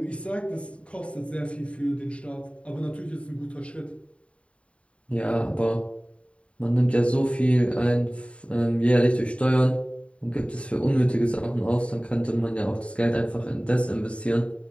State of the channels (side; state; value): right; late; 0.062 ms